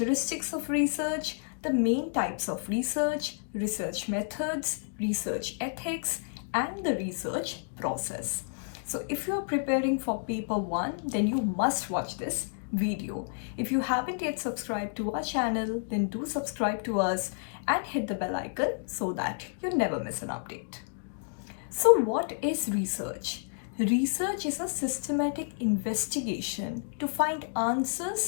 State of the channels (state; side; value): silent; right; digital silence